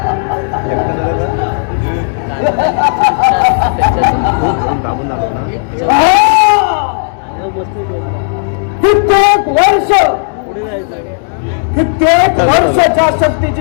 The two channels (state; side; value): silent; right; digital silence